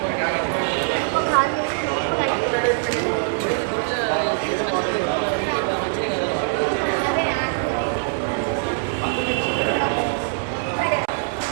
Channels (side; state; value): left; silent; 64 dB below the other